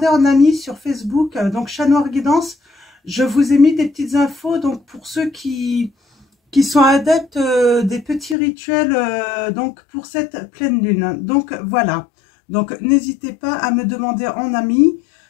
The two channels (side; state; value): right; drops out; at 8.3 s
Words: en ami sur Facebook, donc Chat Noir Guidance. Je vous ai mis des petites infos donc pour ceux qui sont adeptes des petits rituels donc pour cette pleine lune. Donc voilà, donc n'hésitez pas à me demander en ami.